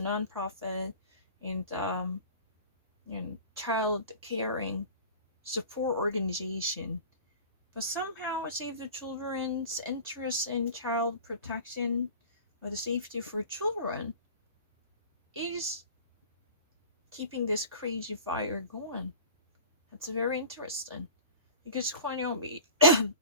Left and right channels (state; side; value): inverted; both; correlation -0.38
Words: nonprofit, and child caring support organization. But somehow Save the Children's interest in child protection or the safety for children is keeping this crazy fire going. That's very interesting. Because Kwanyomi